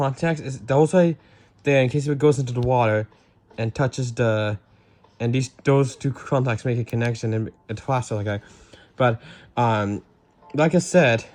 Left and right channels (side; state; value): both; identical; correlation 1.00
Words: is those way there in case if it goes into the water and touches those two contacts make a connection and it flashes like that. But like I said,